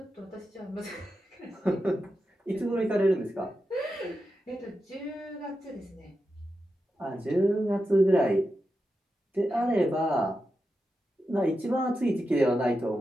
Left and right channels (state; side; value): normal; both; correlation 0.89